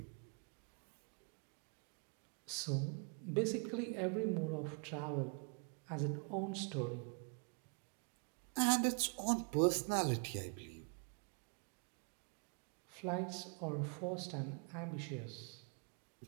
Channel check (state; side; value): quieter; left; 38.8 dB